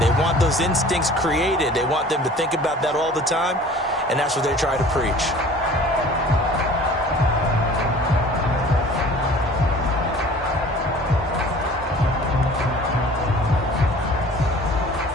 They want those instincts created. They want them to think about that all the time, and that's what they try to preach.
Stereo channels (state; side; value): normal; both; correlation 0.46